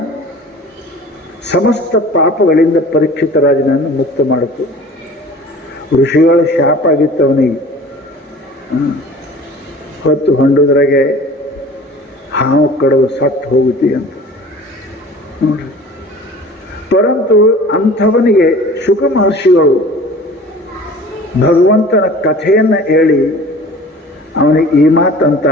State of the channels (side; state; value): both; normal; correlation 0.44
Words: ಸಮಸ್ತ ಪಾಪಗಳಿಂದ ಪರೀಕ್ಷಿತ ರಾಜನನ್ನು ಮುಕ್ತ ಮಾಡಿತು. ಋಷಿಗಳ ಶಾಪ ಆಗಿತ್ತು ಅವನಿಗೆ. ಹೊತ್ತು ಹೊಂಡುದ್ರಾಗೆ ಹಾವು ಕಡವು ಸತ್ತು ಹೋಗುತ್ತಿ ಅಂತ ನೋಡ್ರಿ. ಪರಂತು ಅಂಥವನಿಗೆ ಶುಕ ಮಹರ್ಷಿಗಳು ಭಗವಂತನ ಕಥೆಯನ್ನು ಹೇಳಿ ಅವನಿಗೆ ಈ